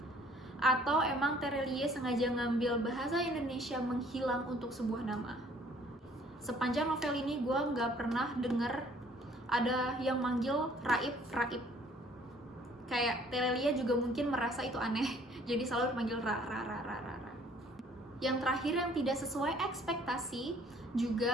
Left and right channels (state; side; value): normal; both; correlation 0.58